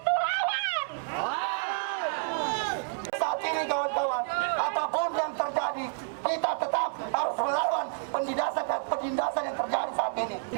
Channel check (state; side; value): silent; left; digital silence